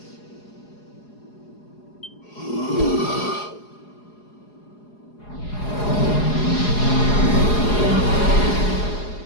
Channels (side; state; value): right; late; 4.8 ms